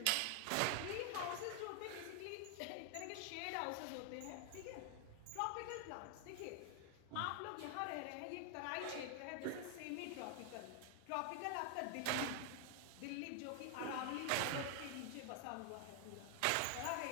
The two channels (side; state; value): both; different; correlation 0.00